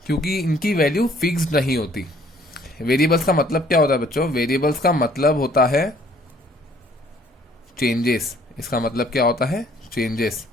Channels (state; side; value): normal; both; correlation 0.60